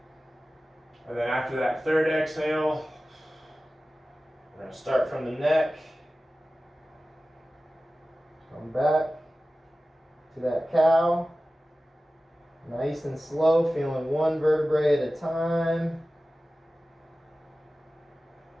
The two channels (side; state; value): both; normal; correlation 0.96